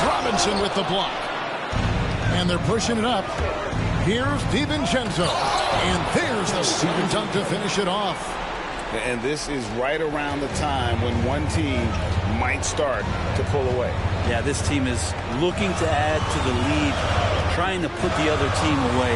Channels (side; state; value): both; identical; correlation 1.00